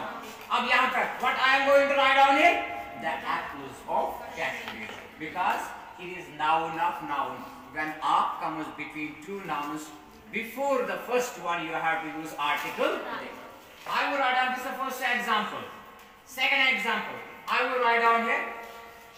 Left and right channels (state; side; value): identical; both; correlation 1.00